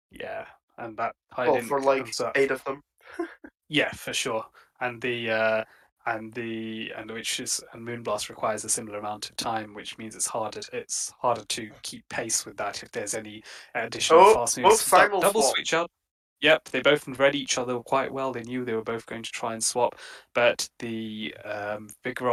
Yeah, and that I Well, for didn't. like 8 of them. Yeah, for sure. And and Moonblast requires a similar amount of time, which means it's harder to keep pace with that if there's any additional Oh, fast both moves. simul Double swap. switch out. Yep, they both read each other quite well. They knew they were both going to try and swap, but the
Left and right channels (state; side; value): identical; both; correlation 1.00